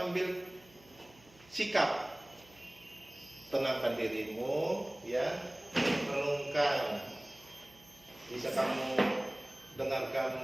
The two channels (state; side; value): noise; right; hum, 26 dB below the sound